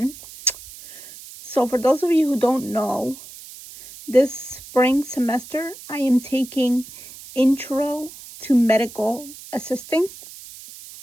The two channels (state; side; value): noise; right; hiss, 17 dB below the sound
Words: So for those of you who don't know, this spring semester I am taking Intro to Medical Assisting.